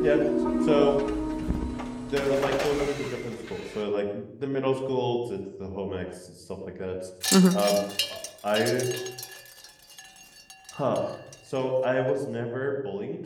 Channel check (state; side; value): identical; both; correlation 1.00